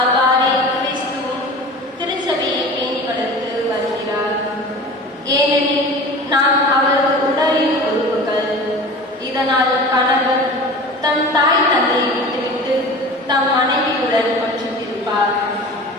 கிறிஸ்துவும் திருச்சபையை பேணி வளர்த்து வருகிறார். ஏனெனில் நாம் அவரது உடலின் உறுப்புகள். இதனால் கணவன் தன் தாய் தந்தையை விட்டுவிட்டு தம் மனைவியுடன் ஒன்றித்திருப்பார்.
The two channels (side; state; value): both; normal; correlation 0.37